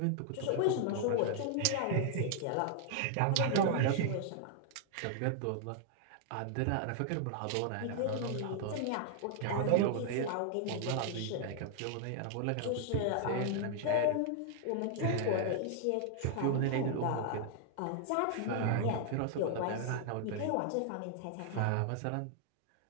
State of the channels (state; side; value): different; both; correlation 0.00